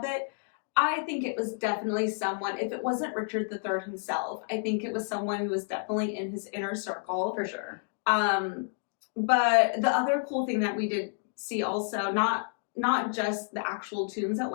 it. I think it was definitely someone, if it wasn't Richard III himself, I think it was someone who was definitely in his inner circle. For sure. But the other cool thing that we did see also, not just the actual tombs at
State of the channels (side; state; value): right; silent; 58 dB below the other